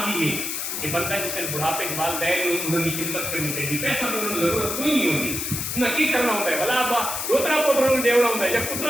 بھی ہے کہ بندہ جسے بڑھاپے کے والدین انہوں نے خدمت کرنی چاہیے پیسہ تو انہوں نے ضرورت کوئی نہیں ہوتی انہیں کی کرنا ہوتا ہے بھلا ابا روترا پتروں نے دیوڑا ہوتا ہے جب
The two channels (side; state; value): left; noise; hiss, 3 dB below the sound